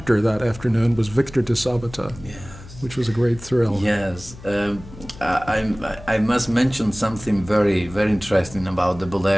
that afternoon was Victor de Sabata, Yes. which was a great thrill. Yes. I must mention something very, very interesting about the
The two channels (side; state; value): left; noise; hum, 17 dB below the sound